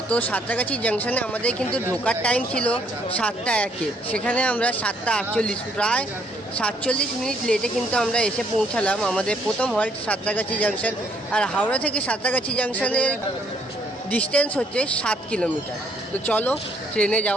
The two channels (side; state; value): both; normal; correlation 0.67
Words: তো সাঁতরাগাছি জাংশনে আমাদের কিন্তু ঢোকার টাইম ছিল 7:01, সেখানে আমরা 7:48 প্রায় 47 মিনিট লেটে কিন্তু আমরা এসে পৌঁছালাম। আমাদের প্রথম হল্ট সাঁতরাগাছি জাংশন, আর হাওড়া থেকে সাঁতরাগাছি জাংশনের ডিস্টেন্স হচ্ছে 7 কিলোমিটার। তো চলো ট্রেনে